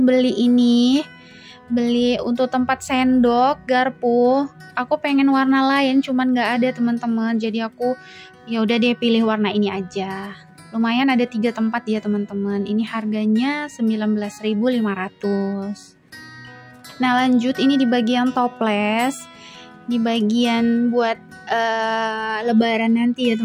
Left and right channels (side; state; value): both; identical; correlation 1.00